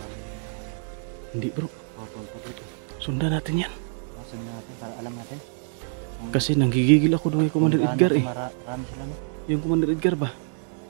Hindi, bro. Papunta dito. Sundan natin yan. Sundan natin para alam natin. Kasi nanggigigil ako doon kay Commander Edgar eh. Marami sila, no? Yung Commander Edgar ba?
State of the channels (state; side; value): silent; left; digital silence